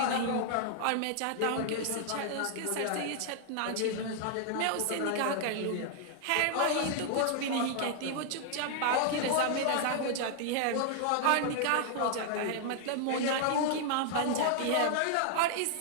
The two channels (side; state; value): both; different; correlation 0.00